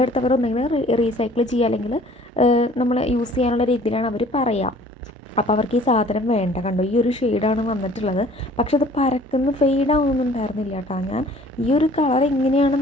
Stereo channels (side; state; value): both; normal; correlation 0.53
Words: ഒന്നെങ്കിൽ റീസൈക്കിൾ ചെയ്യുക അല്ലെങ്കിൽ നമ്മൾ യൂസ് ചെയ്യാനുള്ള രീതിയിലാണ് അവർ പറയുക. അപ്പോൾ അവർക്ക് ഈ സാധനം വേണ്ട. കണ്ടോ, ഈ ഒരു ഷെയ്ഡാണ് വന്നിട്ടുള്ളത്. പക്ഷെ അത് പരക്കുന്ന ഫെയ്ഡാവുന്നൊന്നും ഉണ്ടായിരുന്നില്ല കേട്ടോ. ഞാൻ ഈ ഒരു കളർ എങ്ങനെയാണ്